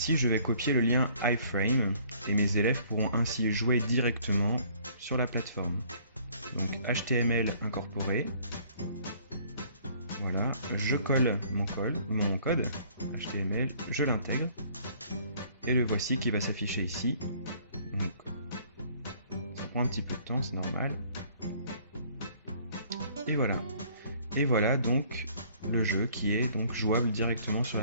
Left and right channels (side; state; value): both; inverted; correlation -0.58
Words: je vais copier le lien iframe et mes élèves pourront ainsi jouer directement sur la plateforme. Donc HTML incorporé. Voilà, je colle mon code HTML, je l'intègre et le voici qui va s'afficher ici. Donc, ça prend un petit peu de temps, c'est normal. Et voilà. Et voilà donc le jeu qui est donc jouable directement sur